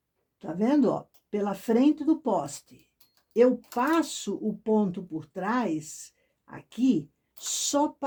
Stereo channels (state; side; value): identical; both; correlation 1.00